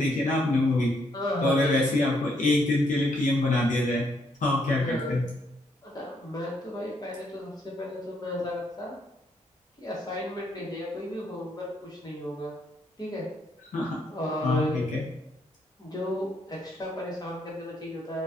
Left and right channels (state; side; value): normal; both; correlation 0.73